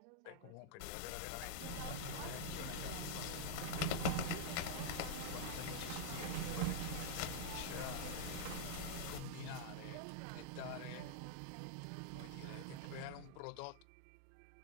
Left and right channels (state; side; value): different; both; correlation -0.02